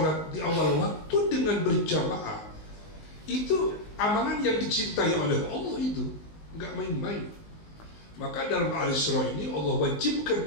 di awal waktu dengan berjamaah, itu amalan yang dicintai oleh Allah, itu nggak main-main. Maka dalam Al-Isra ini Allah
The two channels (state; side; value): late; right; 19 ms